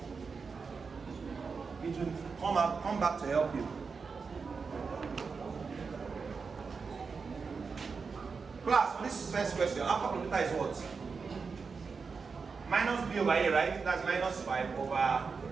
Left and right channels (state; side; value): quieter; left; 5.1 dB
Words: It will come back to help you. Class, for this first question, alpha plus beta is what? Minus b over a, right? That's minus 5 over.